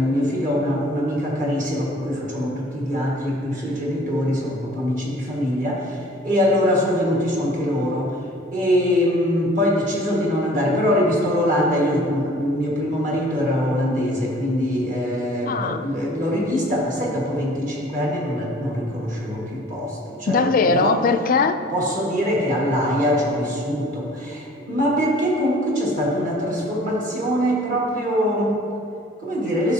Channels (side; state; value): both; normal; correlation 0.49